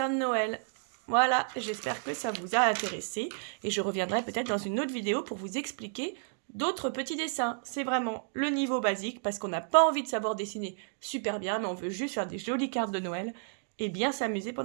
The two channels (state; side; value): silent; left; digital silence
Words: de Noël. Voilà, j'espère que ça vous a intéressé et je reviendrai peut-être dans une autre vidéo pour vous expliquer d'autres petits dessins. C'est vraiment le niveau basique parce qu'on n'a pas envie de savoir dessiner super bien, mais on veut juste faire des jolies cartes de Noël et bien s'amuser